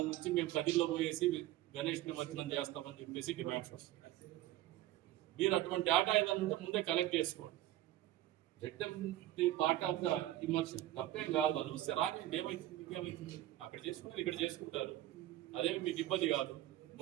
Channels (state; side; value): quieter; left; 14.7 dB